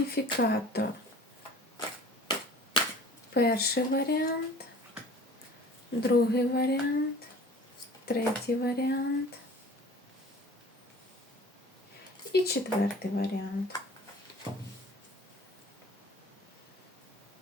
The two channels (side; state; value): both; normal; correlation 0.46